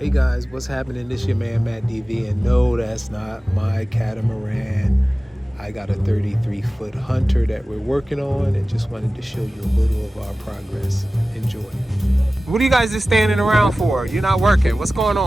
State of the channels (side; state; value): both; normal; correlation 0.96